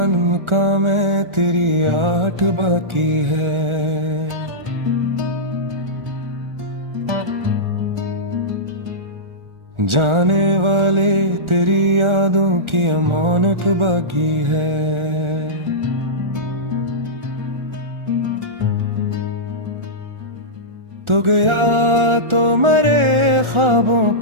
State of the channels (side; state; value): left; late; 1.4 ms